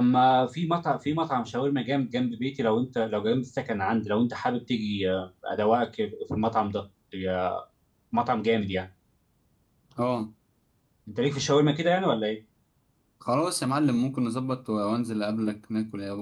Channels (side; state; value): both; identical; correlation 1.00